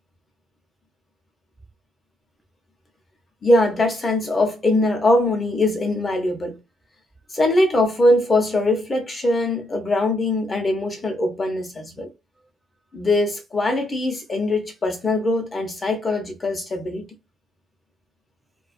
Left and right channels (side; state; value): both; normal; correlation 0.78